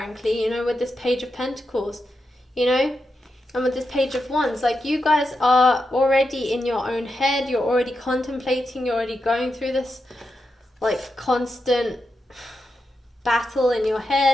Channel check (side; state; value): both; normal; correlation 0.87